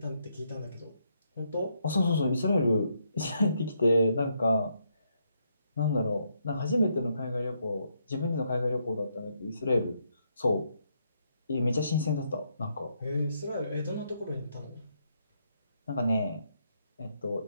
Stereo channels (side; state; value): both; inverted; correlation -0.76